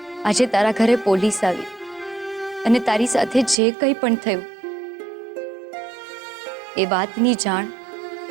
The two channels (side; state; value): left; drops out; at 3.6 s